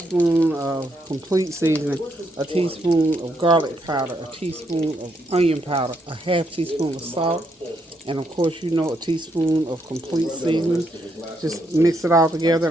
of complete seasoning, a teaspoon of garlic powder, a teaspoon of onion powder, a half teaspoon of salt, and of course, you know, a teaspoon of complete seasoning. Just mix it all together.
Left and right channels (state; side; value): normal; both; correlation 0.77